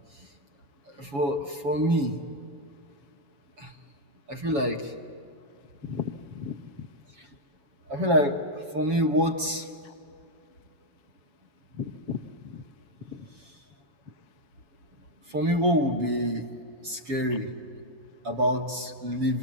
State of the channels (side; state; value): left; late; 7.1 ms